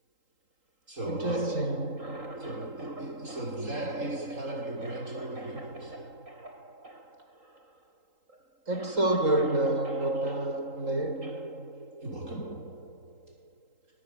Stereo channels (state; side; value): late; left; 3.8 ms